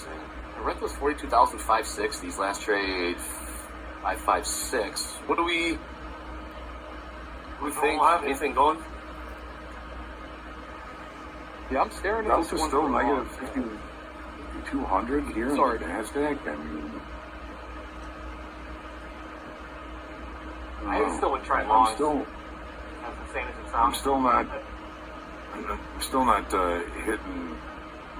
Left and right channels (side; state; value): both; identical; correlation 1.00